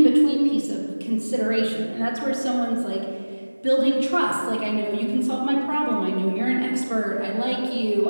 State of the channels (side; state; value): both; inverted; correlation -1.00